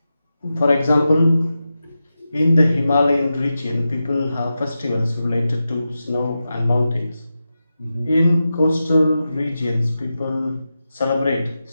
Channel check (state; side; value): inverted; both; correlation -0.91